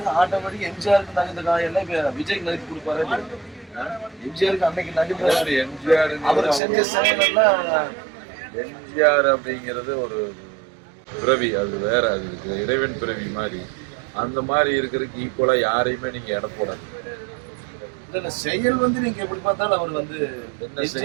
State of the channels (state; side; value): drops out; left; at 6.6 s